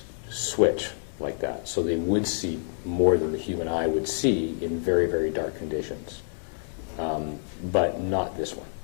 switch like that, so they would see more than the human eye would see in very, very dark conditions, but not this one.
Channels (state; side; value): silent; right; digital silence